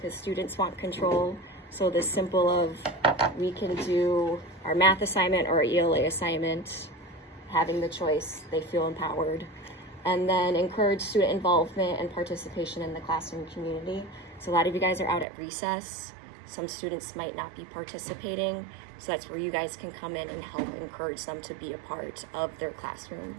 students want control. So the simple of we can do our math assignment or our ELA assignment, having the choice, they feel empowered. And then encourage student involvement and participation in the classroom community. So a lot of you guys are out at recess. Some students might not be participating. So that's where you guys can come in and help encourage them to be a part of their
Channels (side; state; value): left; drops out; at 15.2 s